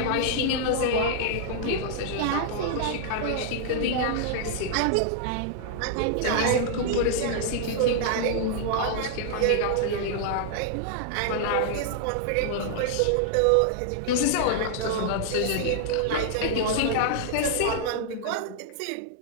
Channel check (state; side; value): different; both; correlation -0.01